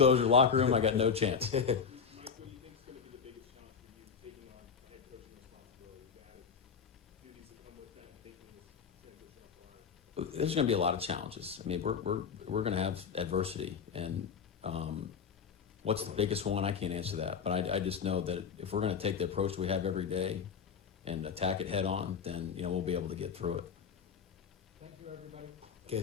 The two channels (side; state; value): right; quieter; 6.4 dB